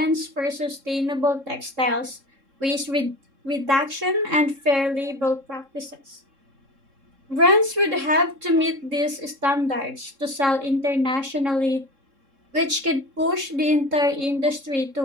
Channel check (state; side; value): late; left; 3.7 ms